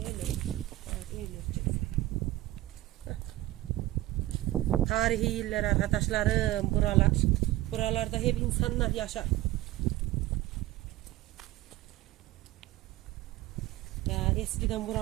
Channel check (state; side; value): quieter; left; 16.8 dB